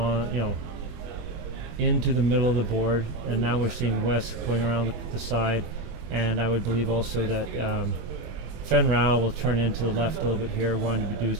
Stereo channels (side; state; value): left; late; 24 ms